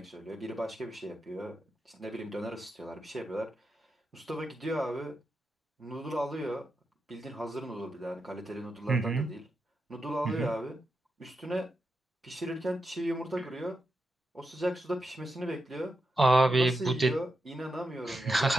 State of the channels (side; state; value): both; normal; correlation 0.87